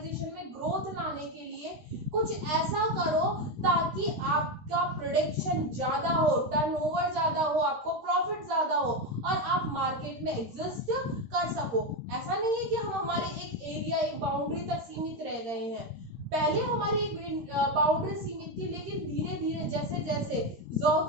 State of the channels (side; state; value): left; late; 13 ms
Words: में ग्रोथ लाने के लिए कुछ ऐसा करो ताकि आपका प्रोडक्शन ज्यादा हो, टर्नओवर ज्यादा हो, आपको प्रॉफिट ज्यादा हो और आप मार्केट में एग्जिस्ट कर सको। ऐसा नहीं है कि हम हमारे एक एरिया एक बाउंड्री तक सीमित रह गए हैं। पहले हमारी एक बाउंड्री सीमित थी, लेकिन धीरे धीरे जैसे जैसे